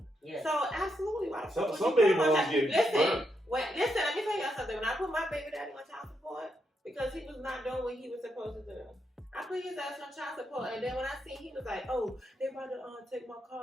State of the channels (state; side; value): normal; both; correlation 0.81